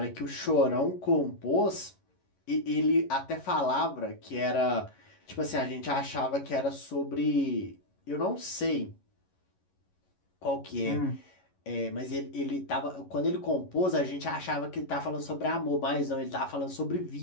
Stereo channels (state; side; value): late; right; 11 ms